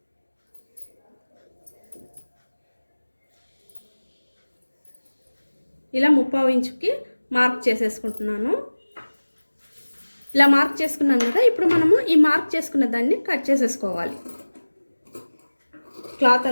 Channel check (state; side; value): inverted; both; correlation -1.00